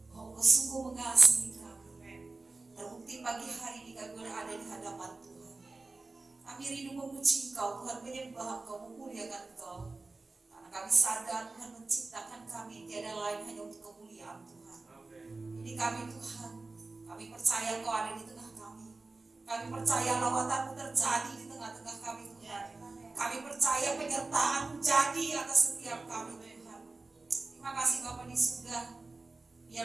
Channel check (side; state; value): left; quieter; 3.5 dB